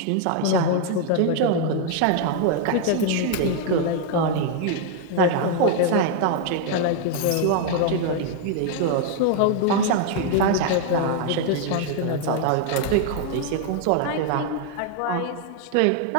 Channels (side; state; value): both; different; correlation 0.00